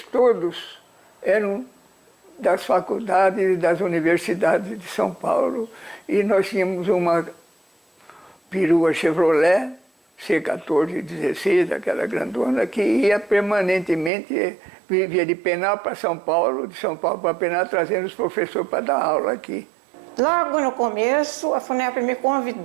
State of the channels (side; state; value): left; drops out; at 14.1 s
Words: todos eram das faculdades e das universidades de São Paulo, e nós tínhamos uma perua Chevrolet, C1416, aquela grandona, que ia permanentemente, vivia de Penápolis para São Paulo, de São Paulo para Penápolis, trazendo os professores para dar aula aqui. Logo no começo, a FUNEP me